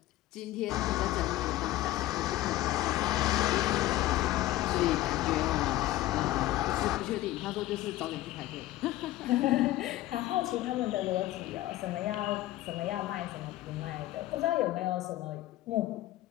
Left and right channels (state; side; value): quieter; right; 15.6 dB